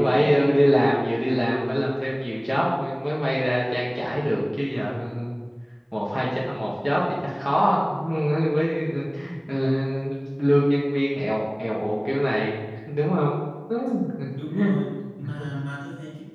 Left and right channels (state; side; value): identical; both; correlation 1.00